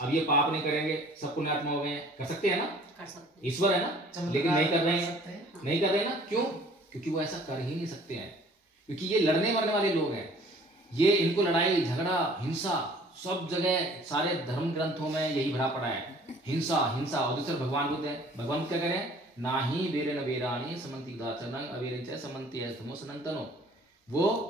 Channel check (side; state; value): both; normal; correlation 0.53